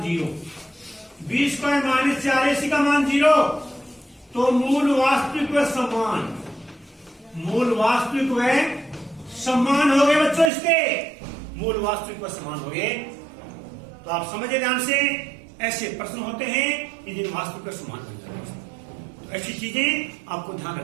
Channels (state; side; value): drops out; left; at 10.5 s